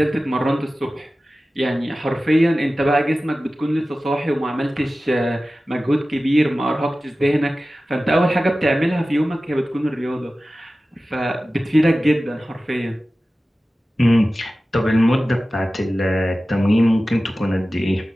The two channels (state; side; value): normal; both; correlation 0.96